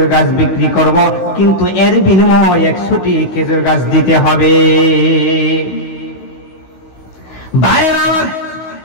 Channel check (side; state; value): right; late; 16 ms